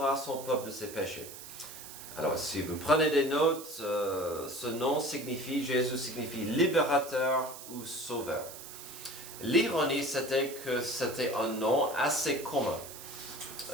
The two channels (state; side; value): noise; right; hiss, 13 dB below the sound